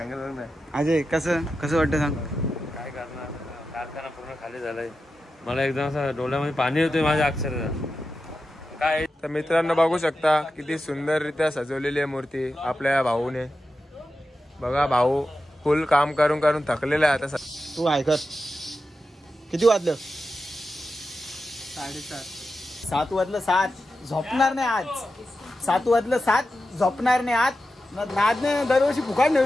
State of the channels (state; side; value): normal; both; correlation 0.91